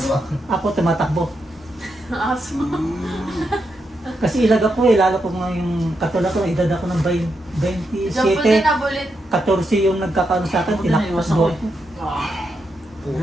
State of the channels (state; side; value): normal; both; correlation 0.83